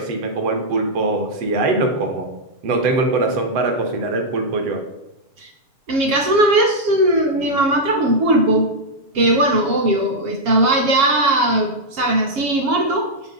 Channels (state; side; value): late; left; 7.3 ms